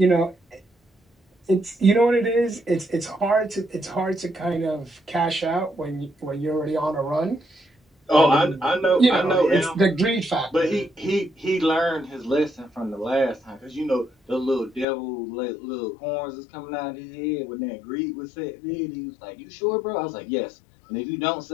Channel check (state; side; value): drops out; right; at 14.9 s